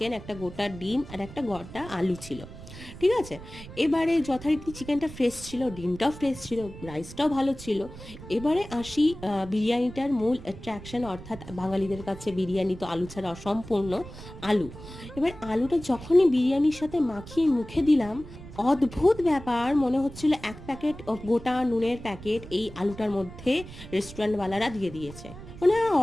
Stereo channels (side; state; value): right; noise; rumble, 15 dB below the sound